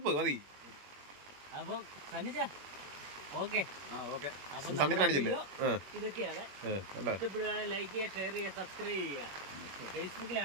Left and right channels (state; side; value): late; left; 21 ms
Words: മതി. അപ്പം സന്നിജ ഓക്കെ. അപ്പം ഇതൊക്കെയാണ്. ഇഷ്ടപ്പെടുകയാണെങ്കിൽ ലൈക്ക് ചെയ്യുക, ഷെയർ ചെയ്യുക, സബ്സ്ക്രൈബ് ചെയ്യുക.